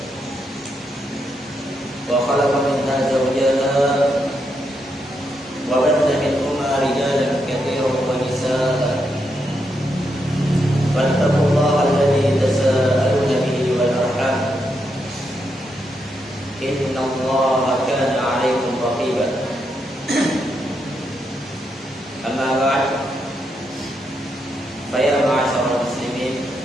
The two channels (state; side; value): normal; both; correlation 0.81